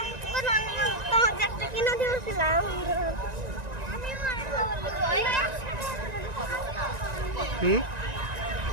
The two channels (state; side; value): late; left; 1.9 ms